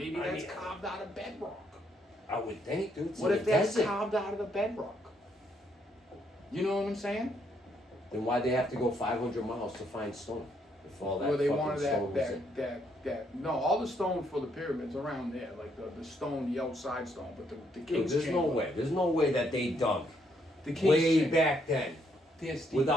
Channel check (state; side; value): normal; both; correlation 0.72